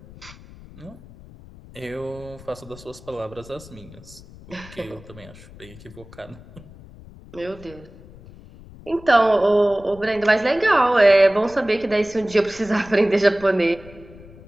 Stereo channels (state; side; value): noise; left; rumble, 20 dB below the sound